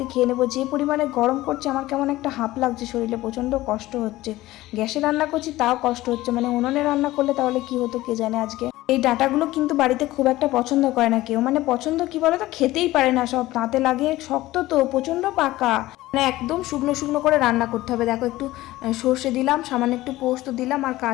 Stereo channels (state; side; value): quieter; right; 17.0 dB